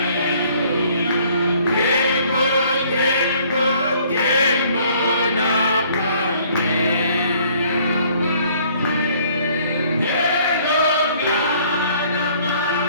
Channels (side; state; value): both; inverted; correlation -0.59